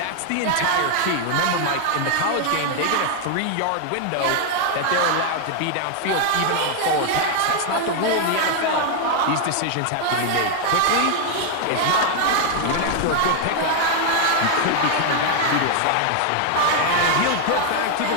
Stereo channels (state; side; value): different; both; correlation 0.00